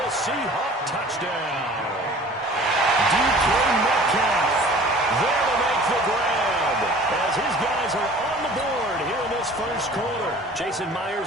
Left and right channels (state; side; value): normal; both; correlation 0.47